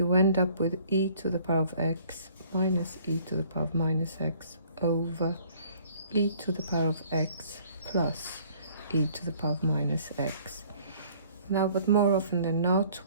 end up with e to the power of x minus e to the power of minus x over e to the power of x plus e to the power of minus x. Now, but more often than not,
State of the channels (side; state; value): both; inverted; correlation -0.57